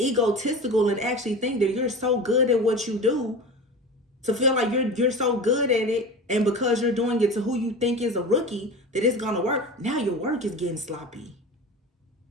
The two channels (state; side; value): normal; both; correlation 0.31